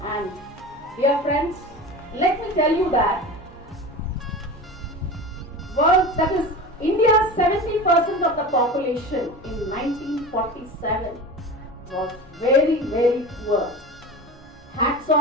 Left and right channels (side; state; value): both; normal; correlation 0.31